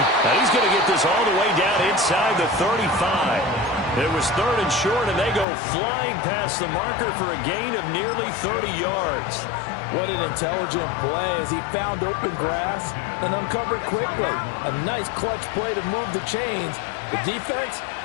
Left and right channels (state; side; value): drops out; right; at 5.5 s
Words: Now he's going to get this all the way down inside the 35. It was third and short, and they go flying past the marker for a gain of nearly 30 yards. What an intelligent play as he found open grass and uncovered quickly. A nice clutch play to move the chains. The defense,